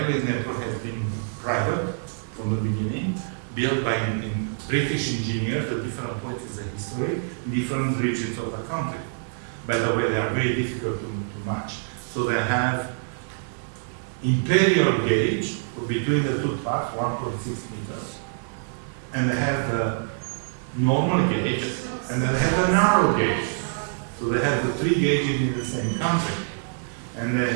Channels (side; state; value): left; silent; digital silence